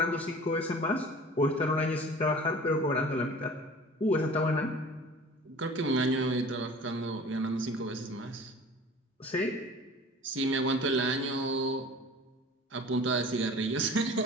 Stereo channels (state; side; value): normal; both; correlation 0.43